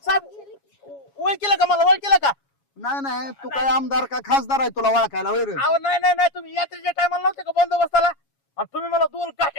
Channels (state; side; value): late; right; 7.2 ms